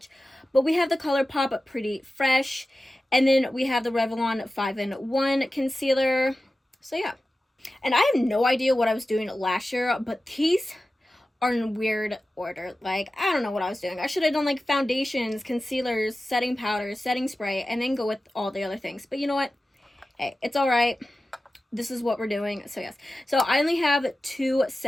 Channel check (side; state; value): both; normal; correlation 0.94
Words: But we have the ColourPop Pretty Fresh, and then we have the Revlon 5-in-1 concealer. So yeah, and I have no idea what I was doing last year, but these are in weird order. Like, I don't know what I was doing. I should have done like foundations, concealers, setting powders, setting spray, and then go with all the other things. But you know what? Hey, it's all right. This is what we're doing. So yes. So I only have 2